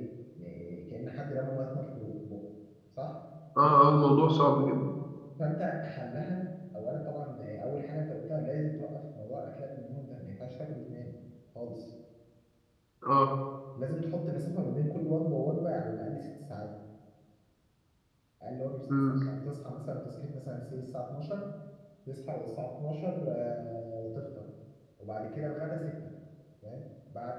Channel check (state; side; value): identical; both; correlation 1.00